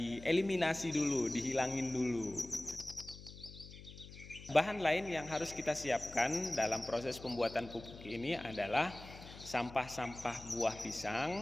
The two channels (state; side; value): noise; left; hum, 16 dB below the sound